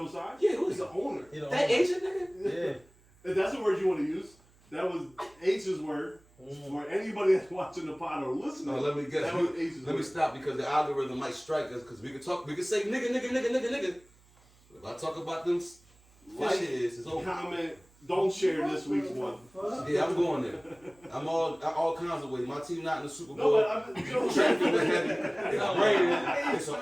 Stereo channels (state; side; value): noise; right; hum, 30 dB below the sound